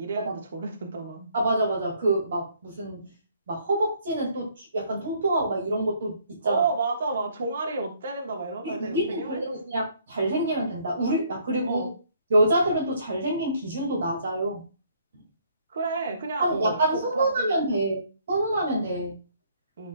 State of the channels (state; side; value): inverted; both; correlation -0.65